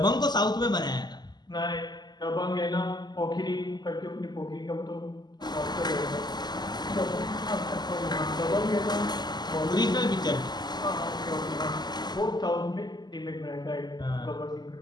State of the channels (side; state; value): right; late; 0.21 ms